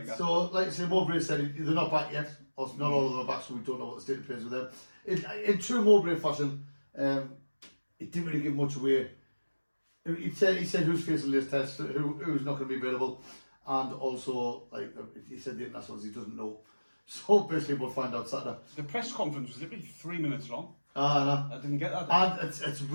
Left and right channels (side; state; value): both; inverted; correlation -1.00